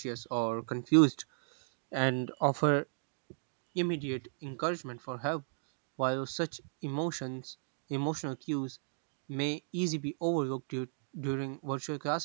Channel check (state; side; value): silent; left; digital silence